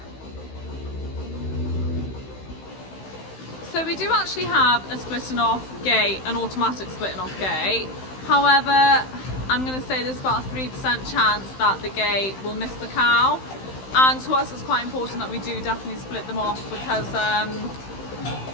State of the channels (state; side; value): late; right; 15 ms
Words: So we do actually have a splitting off gate, an automatic splitting off gate. However, I'm going to say there's about a 3% chance that the gate will miss the cow. And to us it's quite important that we do definitely split them off, because